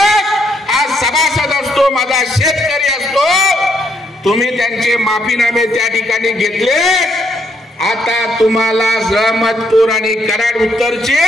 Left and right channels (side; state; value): both; normal; correlation 0.74